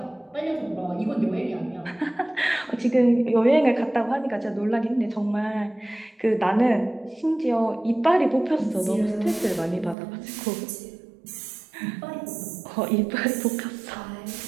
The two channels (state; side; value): drops out; left; at 10.0 s